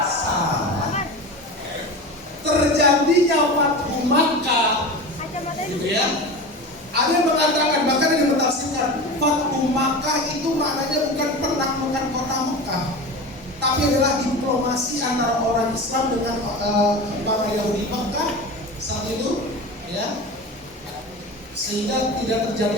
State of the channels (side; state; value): both; normal; correlation 0.29